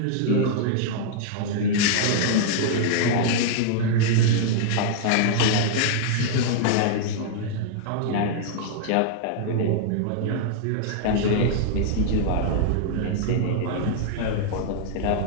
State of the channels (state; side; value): different; both; correlation -0.01